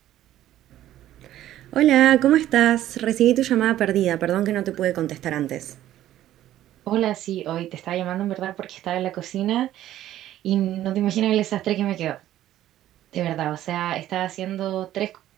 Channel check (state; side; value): quieter; left; 13.1 dB